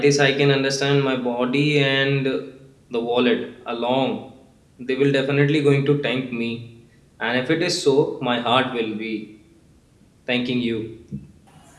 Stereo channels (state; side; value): identical; both; correlation 1.00